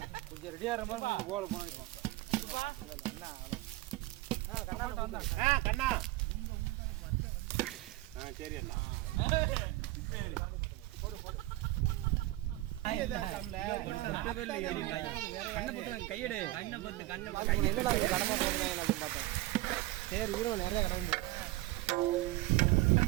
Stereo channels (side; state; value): left; quieter; 18.4 dB